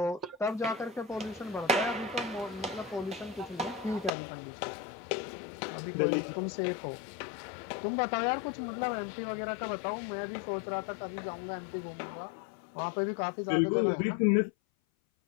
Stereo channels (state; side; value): drops out; right; at 4.1 s